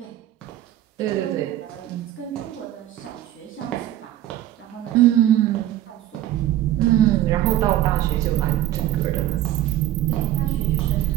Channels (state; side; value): quieter; left; 13.1 dB